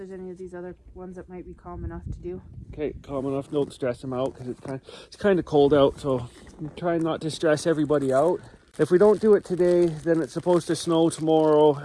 any of these other ones that might be calm enough to do. Okay, calm enough. Don't stress them out because it's kind of cold out, so I'm trying not to stress everybody out. If we don't do it today, then it's supposed to snow tomorrow,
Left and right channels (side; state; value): both; identical; correlation 1.00